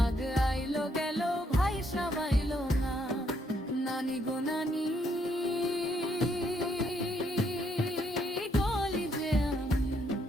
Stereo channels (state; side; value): normal; both; correlation 0.73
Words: আইলো গেল ভাইসাব আইলো না, নানি গো নানি, বলি যে আমি